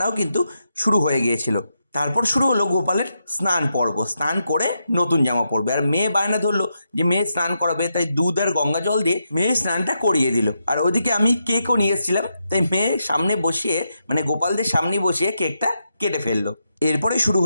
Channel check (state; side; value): inverted; both; correlation -0.84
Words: কিন্তু শুরু হয়ে গিয়েছিল। তারপর শুরু হলো গোপালের স্নান পর্ব। স্নান করে নতুন জামা পরবে, আর মেয়ে বায়না ধরলো যে মেয়ে স্নান করাবে, তাই দুধ আর গঙ্গা জল দিয়ে মেয়ে স্নানটা করিয়ে দিল। আর ওদিকে আমি কেকও নিয়ে এসেছিলাম, তাই মেয়ে সামনে বসিয়ে, মানে গোপালদের সামনে বসিয়ে কেকটা কেটে ফেললো। এরপরে শুরু